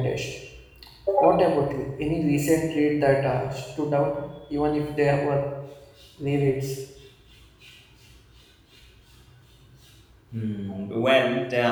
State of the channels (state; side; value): identical; both; correlation 1.00